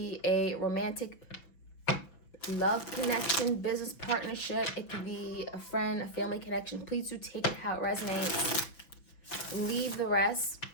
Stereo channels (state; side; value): late; right; 6.2 ms